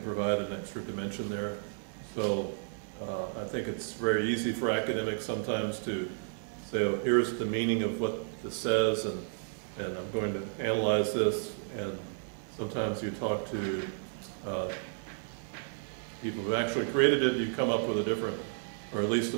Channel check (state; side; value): silent; left; digital silence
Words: provide an extra dimension there. So I think it's very easy for academics sometimes to say, oh, here's the meaning of what this says, and I'm going to analyze this, and sometimes you talk to people who actually created it, you come up with a different, or at least a